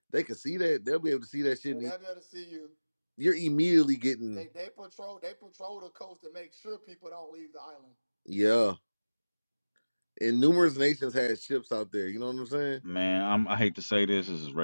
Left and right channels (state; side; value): inverted; both; correlation -1.00